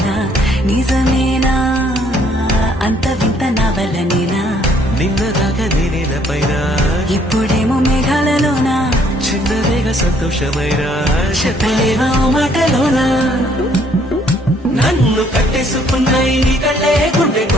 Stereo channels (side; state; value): both; normal; correlation 0.64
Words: నిజమేనా అంత వింత నా వల్లనేనా నిన్నదాకా నేనేలపైన ఇప్పుడేమో మేఘాలలోనా చిన్నదేగా సంతోషమైన చెప్పలేవా మాటలోనా నన్ను కట్టేసుకున్న నీ కళ్ళే గుండె